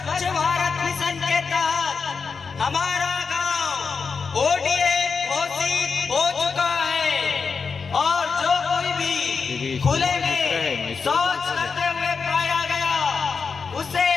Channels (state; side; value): quieter; right; 5.3 dB